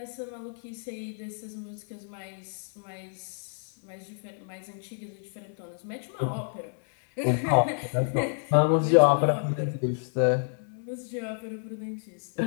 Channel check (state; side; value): silent; right; 58 dB below the other